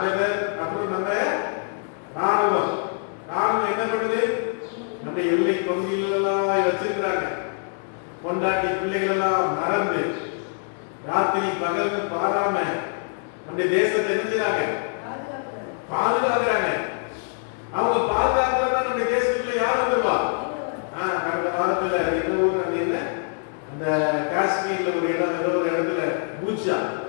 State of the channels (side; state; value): right; silent; 62 dB below the other